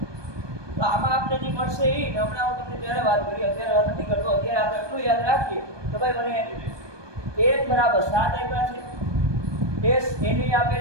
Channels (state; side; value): late; left; 1.2 ms